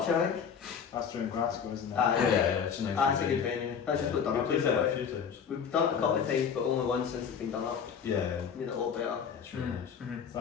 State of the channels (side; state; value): right; quieter; 7.1 dB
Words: I think. That's during Glasgow, isn't it? Aye. Yeah, it's a nice That's a good venue. That's just what done up. We've played there a few times. We've done it a couple of times, but only once since it's been done up. Yeah. Made it a lot better. Yeah, it's really nice. So